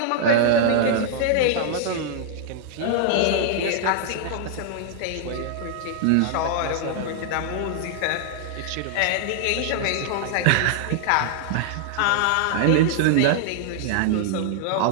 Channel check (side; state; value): both; different; correlation -0.01